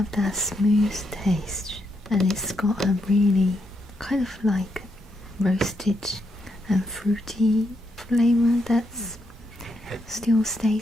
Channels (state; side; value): normal; both; correlation 0.80